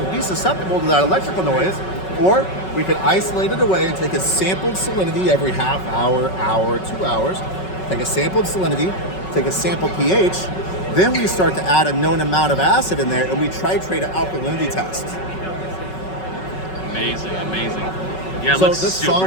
be susceptible to that electrical noise, or we can isolate it away and take a sampled salinity every half hour, 2 hours, take a sampled salinity, take a sampled pH, then we start to add a known amount of acid in there and we titrate an alkalinity test. Amazing. Yeah, it so looks this super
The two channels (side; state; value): right; late; 5.4 ms